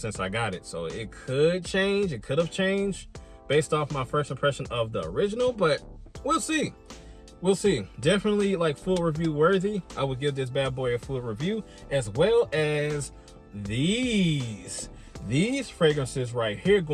I got it, so it could change, it could have changed, based off my first impression of the original, but we'll see. We'll see. Definitely like full review worthy. I would give this bad boy a full review, as well as these fragrances right here.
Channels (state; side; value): identical; both; correlation 1.00